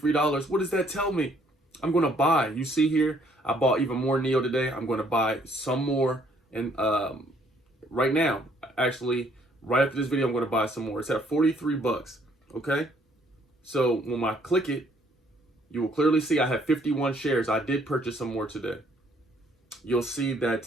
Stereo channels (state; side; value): normal; both; correlation 0.65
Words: what does that tell me? I'm going to buy. You see here, I bought even more NEO today. I'm going to buy some more. And right now, actually, right after this video, I'm going to buy some more. It's at 43 bucks. Okay. So when I click it, you will clearly see I have 51 shares. I did purchase some more today. You'll see that